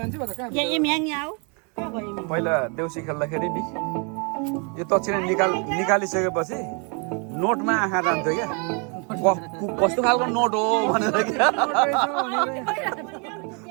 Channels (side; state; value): left; quieter; 35.6 dB